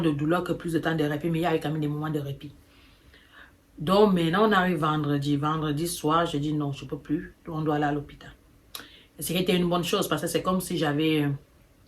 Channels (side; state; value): both; identical; correlation 1.00